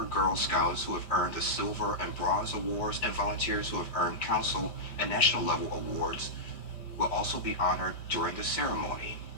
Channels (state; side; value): late; right; 5.1 ms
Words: Girl Scouts who have earned the Silver and Bronze Awards and volunteers who have earned council and national level awards will also be honored during the ceremony.